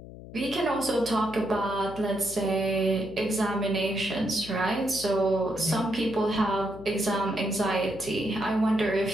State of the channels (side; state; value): left; noise; hum, 15 dB below the sound